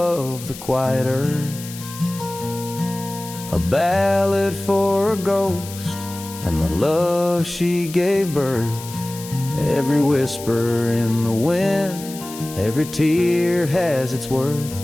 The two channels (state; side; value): noise; left; hiss, 14 dB below the sound